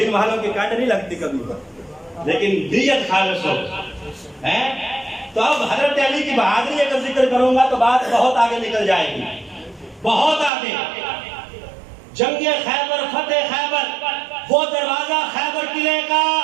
والوں کی کانڈ نہیں لگتی کبھی، لیکن نیت خالص ہو۔ تو اب حضرت علی کی بہادری اگر ذکر کروں گا تو بات بہت آگے نکل جائے گی، بہت آگے۔ جنگ خیبر، فتح خیبر، وہ دروازہ خیبر قلعے کا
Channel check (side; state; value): left; drops out; at 10.5 s